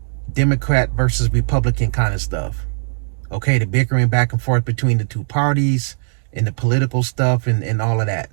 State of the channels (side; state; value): left; silent; digital silence